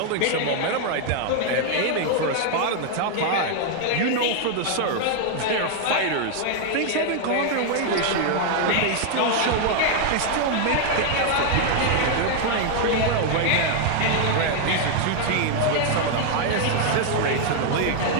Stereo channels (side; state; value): both; different; correlation 0.00